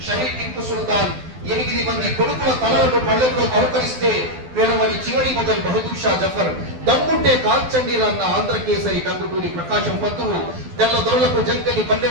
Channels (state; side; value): late; left; 12 ms